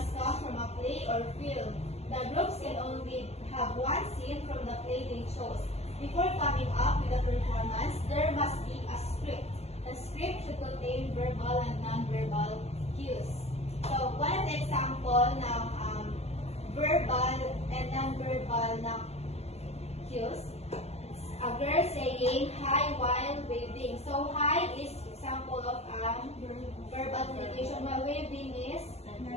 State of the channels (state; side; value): late; right; 0.31 ms